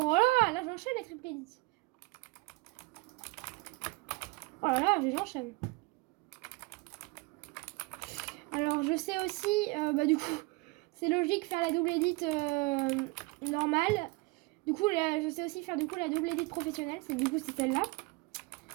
là, j'enchaîne les triple edits. Oh là, j'enchaîne. Alors, je sais aussi, du coup, c'est logique faire la double edit normale. Du coup, je sais aussi faire du coup la double edit professionnelle. Du coup, c'est celle-là.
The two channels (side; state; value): left; quieter; 24.2 dB